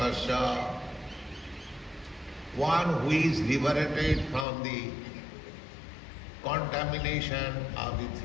one who is liberated from the contamination of the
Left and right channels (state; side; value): drops out; right; at 4.5 s